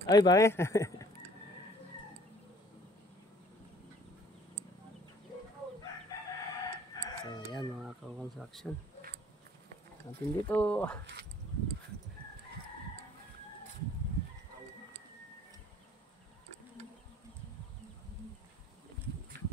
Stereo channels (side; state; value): both; normal; correlation 0.55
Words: Ay, ba eh? So, ayan mga construction. Natin dito.